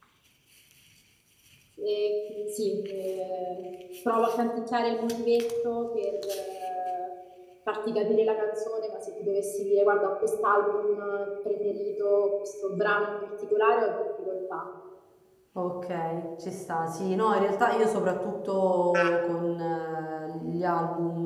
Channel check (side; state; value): both; identical; correlation 1.00